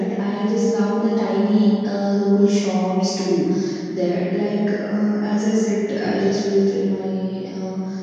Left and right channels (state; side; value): identical; both; correlation 1.00